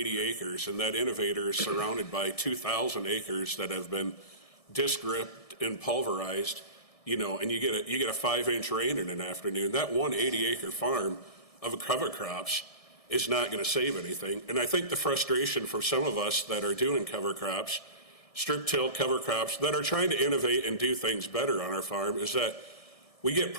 acres, and that innovator is surrounded by 2,000 acres that have been disc ripped and pulverized, and you get a 5-inch rain in an afternoon, that one 80-acre farm of cover crops is not going to save anything. And I think the frustration for some of us that are doing cover crops, strip till cover crops, that are trying to innovate and do things better on our farm is that we get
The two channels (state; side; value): late; right; 1.6 ms